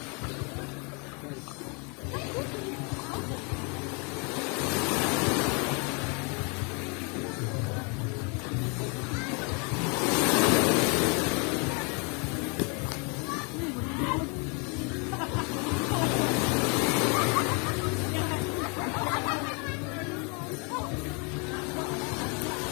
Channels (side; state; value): right; quieter; 33.8 dB